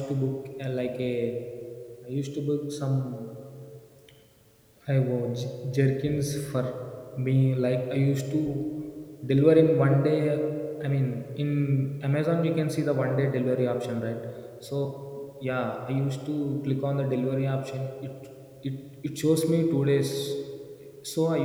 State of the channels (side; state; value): both; identical; correlation 1.00